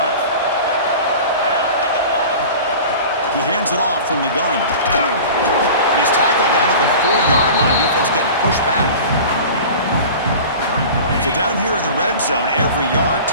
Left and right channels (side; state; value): both; inverted; correlation -0.38